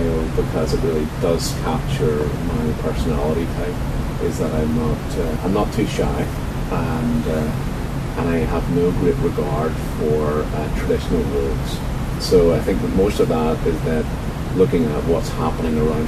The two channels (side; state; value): both; identical; correlation 1.00